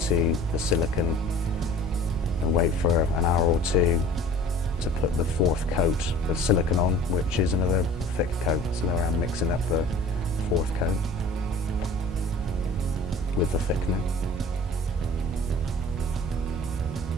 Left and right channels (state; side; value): normal; both; correlation 0.46